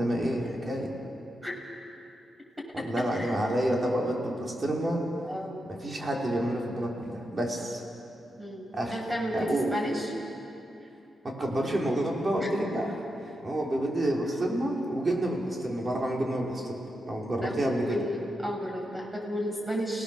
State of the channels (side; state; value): both; normal; correlation 0.86